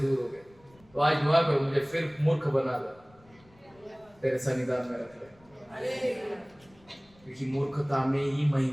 हो गए। तो आज दुआ करो मुझे फिर मूर्ख बना दो, तेरे सन्निधान में रख ले, क्योंकि मूर्खता में ही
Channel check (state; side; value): noise; left; rumble, 29 dB below the sound